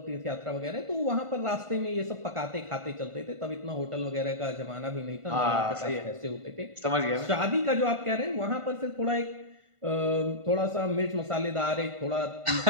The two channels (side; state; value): left; late; 1.5 ms